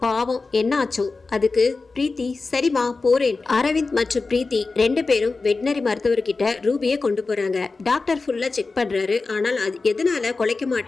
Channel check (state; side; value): quieter; right; 3.9 dB